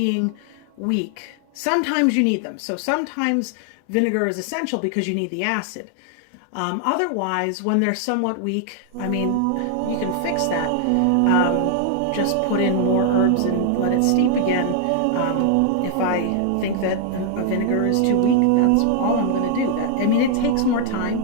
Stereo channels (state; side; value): different; both; correlation 0.00